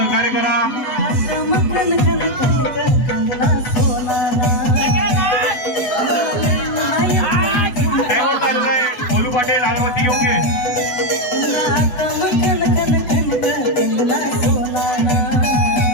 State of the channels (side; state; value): right; late; 8.1 ms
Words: करा. बोलू पाटील अगरबत्ती घेऊन घे.